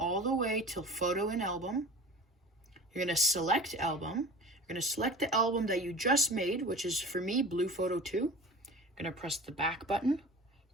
the way till photo in album. You're going to select album. You're going to select the album that you just made, which is for me, blue photo 2. You're going to press the back button.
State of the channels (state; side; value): normal; both; correlation 0.38